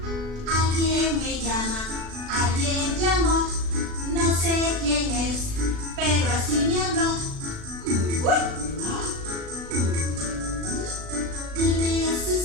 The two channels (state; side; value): late; left; 36 ms